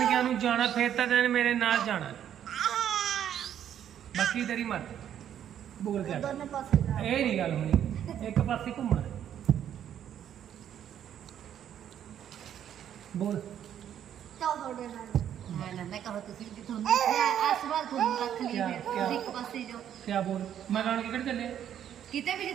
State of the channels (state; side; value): quieter; left; 10.0 dB